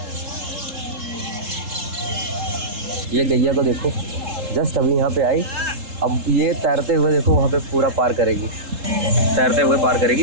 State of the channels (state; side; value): late; left; 3.7 ms